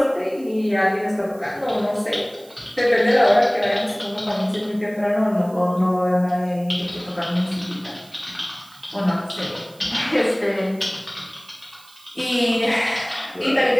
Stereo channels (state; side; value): noise; right; hiss, 25 dB below the sound